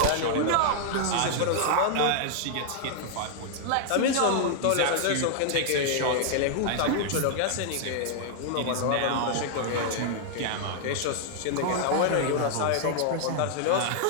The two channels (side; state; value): both; different; correlation -0.01